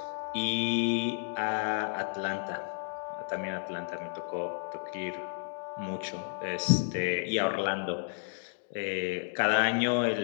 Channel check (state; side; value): silent; right; 57 dB below the other